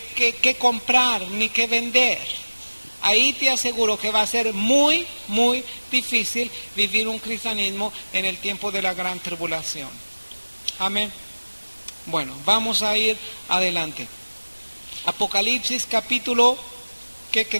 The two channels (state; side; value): inverted; both; correlation -1.00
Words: comprar ni que vender. Ahí te aseguro que va a ser muy, muy difícil vivir un cristianismo en el tiempo de la gran tribulación. Amén. Bueno, vamos a ir adelante. Apocalipsis capítulo, ¿qué